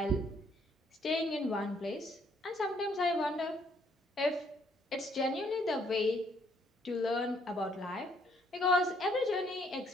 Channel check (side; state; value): both; normal; correlation 0.67